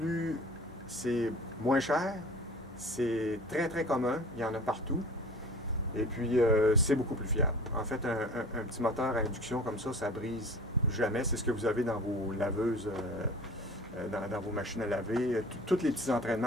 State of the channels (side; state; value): both; normal; correlation 0.43